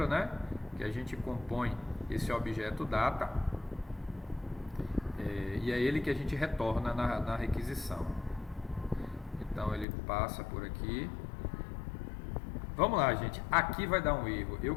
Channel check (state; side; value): drops out; right; at 9.9 s